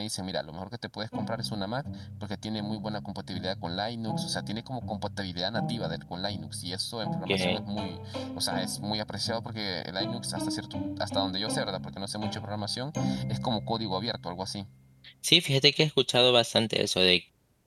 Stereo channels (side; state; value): both; identical; correlation 1.00